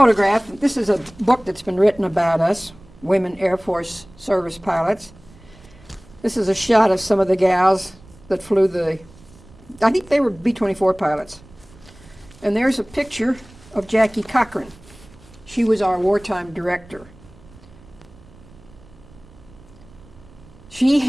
This is a book that's been written about us, Women Air Force Service Pilots. This is a shot of some of the gals that flew I think they were B-24 pilots. And there's a picture of Jackie Cochran. She was our wartime director. She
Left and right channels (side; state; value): right; noise; rumble, 24 dB below the sound